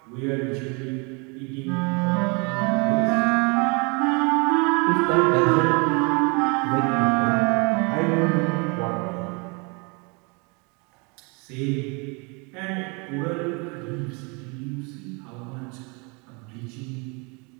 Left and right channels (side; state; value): left; quieter; 31.3 dB